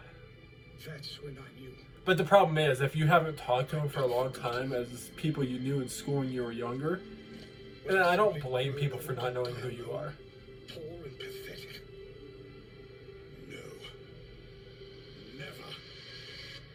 That's when I knew. But the problem is, if you haven't talked to him for a long time as people you knew in school when you were younger, and I don't blame people for not knowing who you are. Poor and pathetic. No. Never.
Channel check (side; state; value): both; identical; correlation 1.00